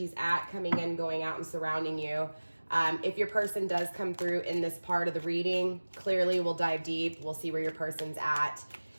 at, coming in, going out, and surrounding you. If your person does come through in this part of the reading, clearly we'll dive deep. We'll see where your person's at.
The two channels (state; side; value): inverted; both; correlation -1.00